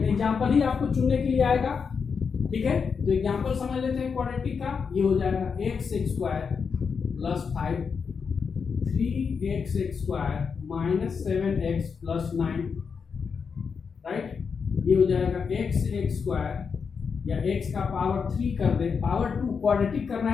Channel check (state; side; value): quieter; right; 5.8 dB